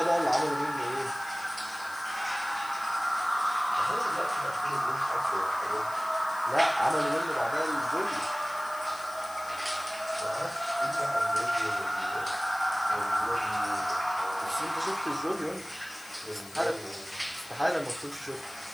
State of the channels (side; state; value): left; noise; hiss, 18 dB below the sound